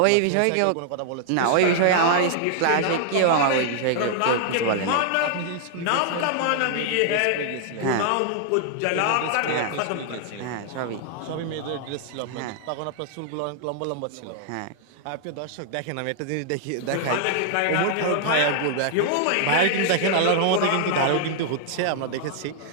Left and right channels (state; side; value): different; both; correlation -0.01